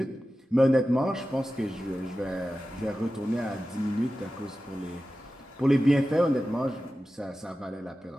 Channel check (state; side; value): normal; both; correlation 0.94